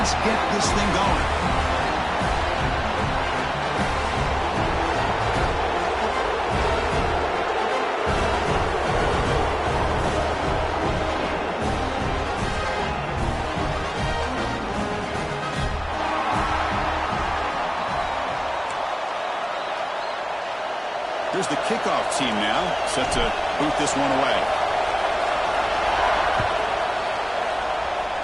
get this thing going. Here's the kickoff team now, set to boot this one away.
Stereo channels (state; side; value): identical; both; correlation 1.00